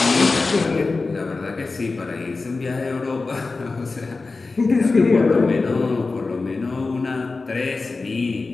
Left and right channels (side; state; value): right; quieter; 3.8 dB